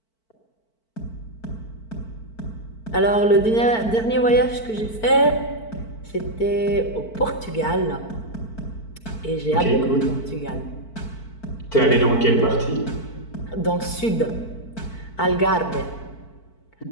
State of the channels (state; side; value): late; right; 4.5 ms